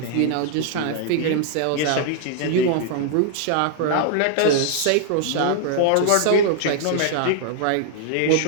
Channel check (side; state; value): both; different; correlation -0.01